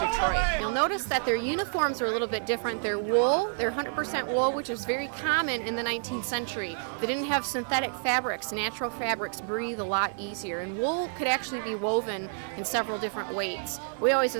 You'll notice that their uniforms are a little bit different. They're wool, they're 100% wool, which is very common in the 19th century. They didn't have synthetic fabrics. Natural fabrics breathe a lot easier, and wool could actually be woven in several different weights. We always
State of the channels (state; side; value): silent; left; digital silence